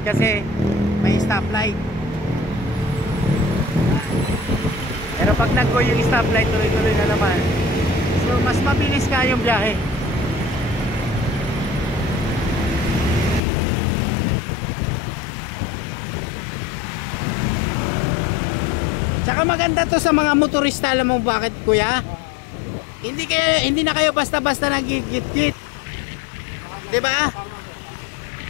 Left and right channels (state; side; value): drops out; right; at 13.4 s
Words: kasi may stoplight. Pero pag nag-go yung stoplight, tuloy-tuloy na naman. So mas mabilis ka yung biyahe. Tsaka maganda to sa mga motorista. Alam mo bakit, kuya? Hindi na kayo basta-basta nagigit-git. 'Di ba?